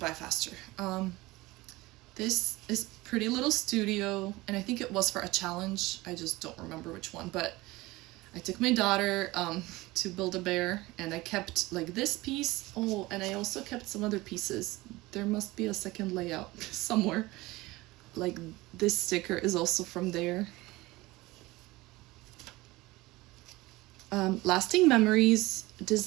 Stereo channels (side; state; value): left; quieter; 20.3 dB